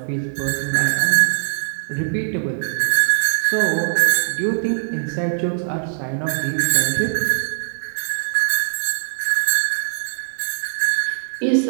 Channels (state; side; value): silent; left; digital silence